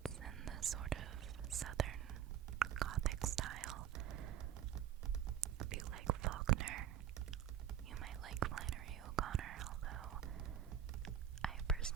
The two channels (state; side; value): quieter; left; 9.8 dB